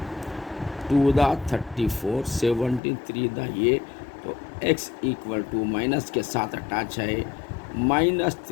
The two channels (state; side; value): drops out; right; at 2.8 s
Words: 2 = 34, 17 3 दा ये। तो x = माइनस के साथ अटैच है